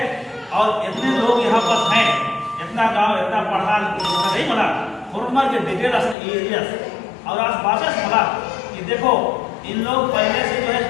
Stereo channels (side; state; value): right; drops out; at 6.2 s